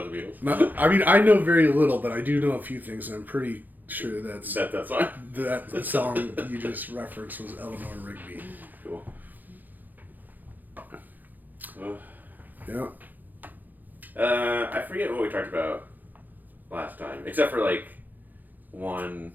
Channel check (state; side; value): late; left; 0.085 ms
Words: the Beatles. I mean, I know very little, but I do know a few things, and I'm pretty sure that's That song? that song you just referenced was Eleanor Rigby. Cool. Yeah. I forget what we talked about last time, except for like one